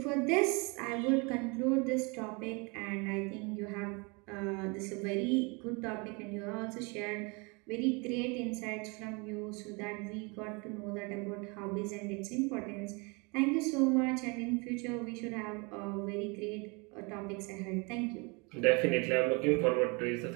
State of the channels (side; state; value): left; quieter; 29.8 dB